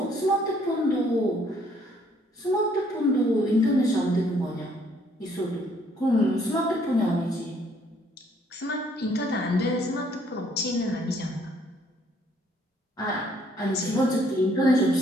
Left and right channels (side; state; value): both; normal; correlation 0.65